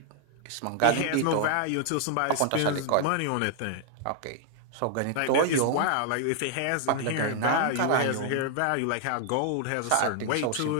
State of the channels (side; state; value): both; different; correlation -0.01